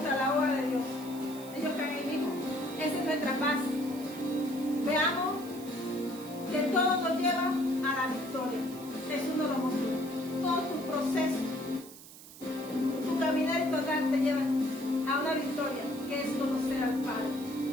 la obra de Dios. Ellos están ahí mismo. Esa es nuestra paz. Veamos que todo nos lleva a la victoria. Jesús nos lo mostró. Todo tu proceso, tu caminar y tu andar te llevan a una victoria, que es conocer al Padre.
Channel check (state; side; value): noise; right; hiss, 17 dB below the sound